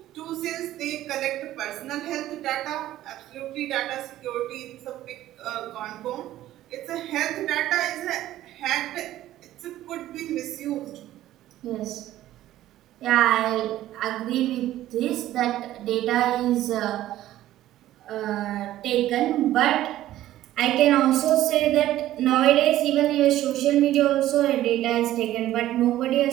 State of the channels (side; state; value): left; quieter; 13.9 dB